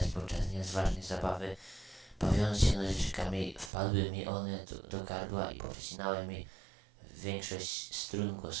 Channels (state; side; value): drops out; left; at 3.7 s